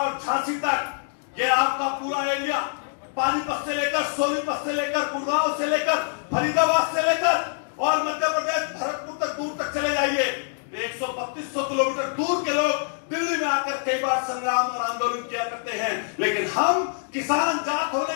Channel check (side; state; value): right; silent; digital silence